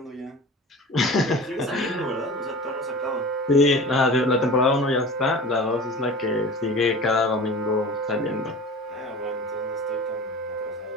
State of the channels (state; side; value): normal; both; correlation 0.37